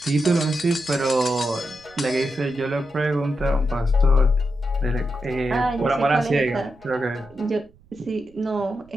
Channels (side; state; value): right; noise; rumble, 28 dB below the sound